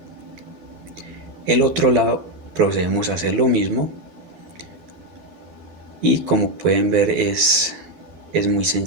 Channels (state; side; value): late; left; 12 ms